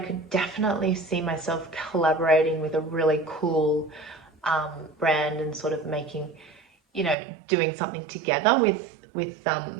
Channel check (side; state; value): left; drops out; at 7.2 s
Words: definitely see myself collaborating with a really cool brand and sort of making, doing something together